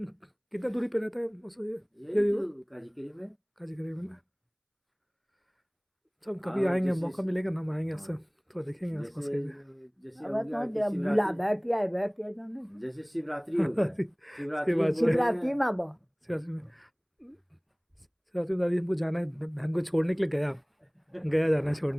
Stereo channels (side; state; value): both; identical; correlation 1.00